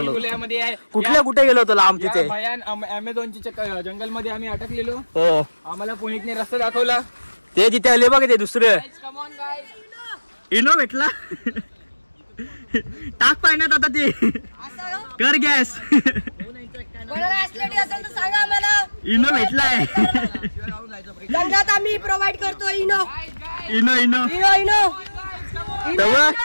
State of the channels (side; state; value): both; inverted; correlation -1.00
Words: कुठल्या कुठे गेलो होतो लांब तिथे भयान अमेझॉनच्या जंगल मध्ये आम्ही अटकलेलो. हो आम्हाला पुणेतने रस्ता दाखवला. ते तिथे आले बघ ते दुसरं इनो भेटला. टाक पाण्यात आता ते कर गॅस. इनो भेटलाय. जंगलात आम्ही प्रोव्हाइड करतो Eno. Eno Eno Eno Eno